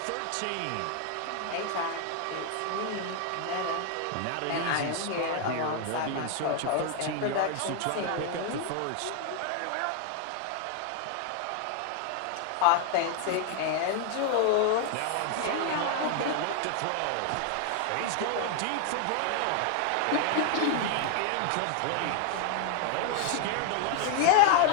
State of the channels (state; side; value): different; both; correlation 0.00